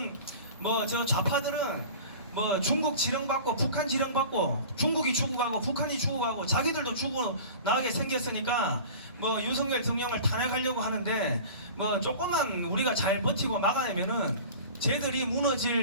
저 좌파들은 중국 지령받고 북한 지령받고 중국이 죽어가고 북한이 죽어가고 자기들도 죽어나가게 생겼으니까 윤석열 대통령을 탄핵하려고 하는데 조금만 우리가 잘 버티고 막아내면은 쟤들이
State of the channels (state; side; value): inverted; both; correlation -0.39